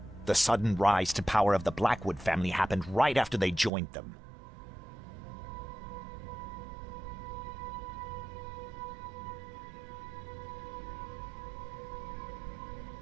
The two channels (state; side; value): drops out; left; at 3.7 s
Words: The sudden rise to power of the Blackwood family happened right after they joined them.